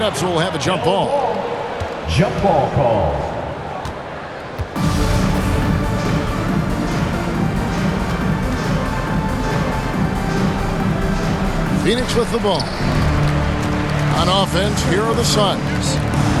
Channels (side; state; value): both; identical; correlation 1.00